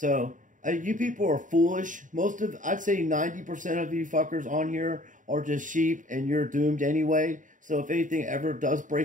you people are foolish. I'd say 90% of you fuckers on here are just sheep, and you're doomed anyway. So if anything ever does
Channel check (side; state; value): left; late; 0.37 ms